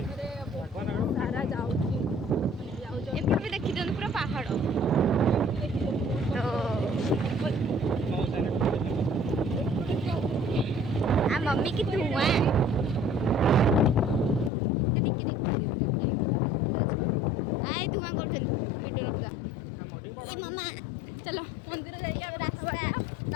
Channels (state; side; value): drops out; right; at 14.5 s